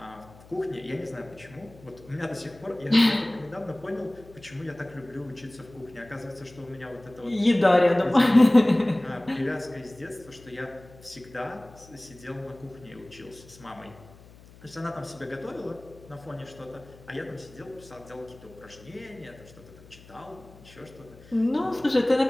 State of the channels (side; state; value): left; noise; hum, 22 dB below the sound